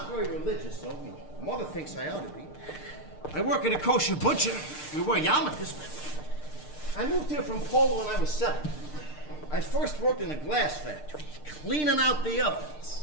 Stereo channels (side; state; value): right; late; 6.6 ms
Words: very religious, though. Mother thinks I ought to be. I work at a kosher butcher. We wear yarmulkes. I moved here from Poland when I was 7. I first worked in a glass factory, cleaning out the